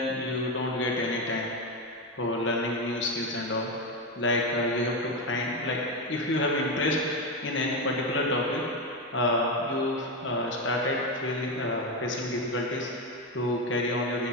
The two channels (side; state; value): both; normal; correlation 0.12